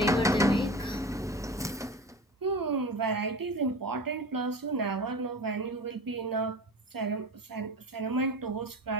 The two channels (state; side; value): normal; both; correlation 0.32